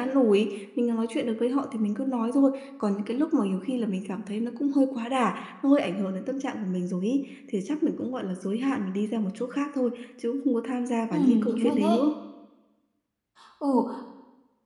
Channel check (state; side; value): identical; both; correlation 1.00